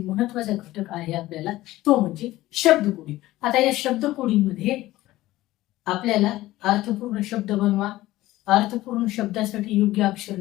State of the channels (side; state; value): right; quieter; 16.7 dB